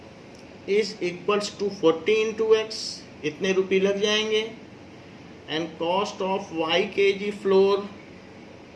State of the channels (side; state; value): both; identical; correlation 1.00